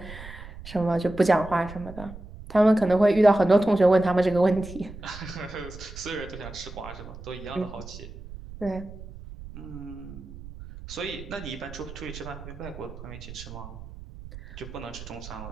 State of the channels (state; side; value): noise; right; rumble, 14 dB below the sound